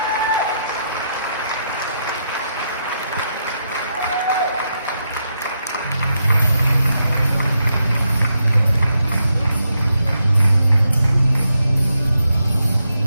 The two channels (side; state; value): both; inverted; correlation -0.82